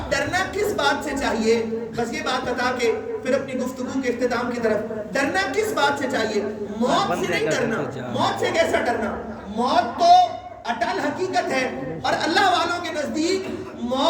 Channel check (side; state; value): both; identical; correlation 1.00